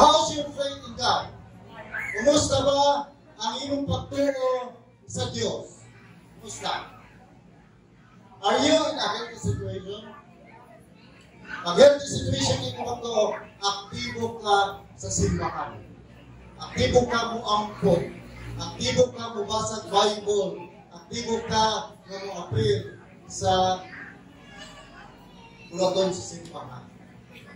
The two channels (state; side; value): identical; both; correlation 1.00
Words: your faith in God? Kumusta ba ang iyong pagtuo sa Diyos? Kumusta? Are you in a healthy situation? Pag healthy situation ito pagtuo, aktibo ka sa simbahan. Aktibo ka mo ampon. Aktibo ka mo basag Bible. Aktibo ka na mo appeal sa bulaton sa simbahan.